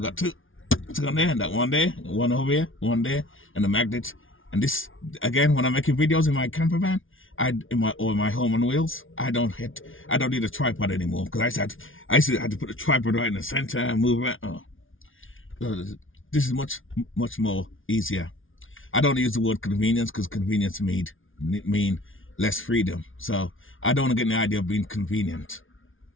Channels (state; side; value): late; right; 0.58 ms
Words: two. It's on there, and that one there, one over here, one there, and the magnet. And this again, when I'm making videos in my camper van, in my home on wheels, I don't need a tripod anymore because I used to have to put a tripod right in the center and move around. This is much more easier. I don't use the word convenience because convenience mean less freedom. So I don't want to get the idea of being convenient,